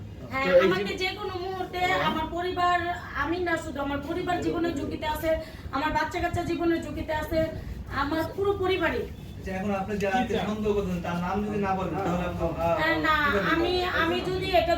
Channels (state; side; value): identical; both; correlation 1.00